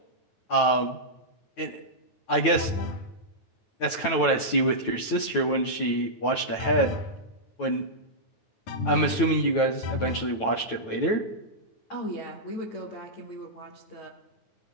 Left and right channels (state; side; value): late; right; 9.2 ms